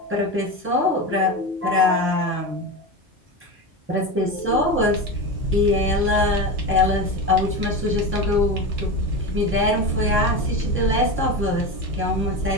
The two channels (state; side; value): normal; both; correlation 0.22